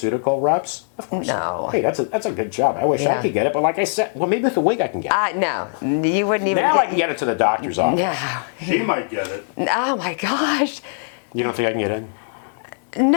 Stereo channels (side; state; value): right; silent; digital silence